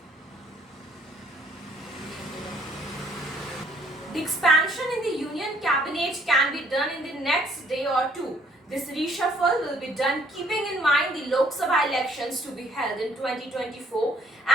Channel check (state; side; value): normal; both; correlation 0.63